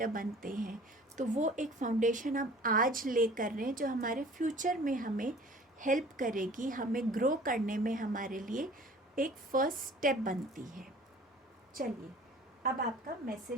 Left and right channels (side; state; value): both; normal; correlation 0.47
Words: बनते हैं। तो वो एक फाउंडेशन हम आज ले कर रहे हैं जो हमारे फ्यूचर में हमें हेल्प करेगी, हमें ग्रो करने में हमारे लिए एक फर्स्ट स्टेप बनती है। चलिए अब आपका